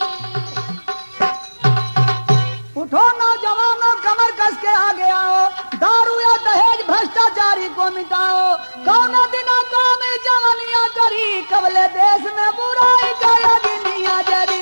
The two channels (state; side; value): inverted; both; correlation -1.00